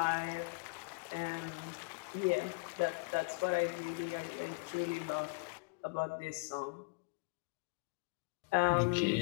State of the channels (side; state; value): right; quieter; 28.4 dB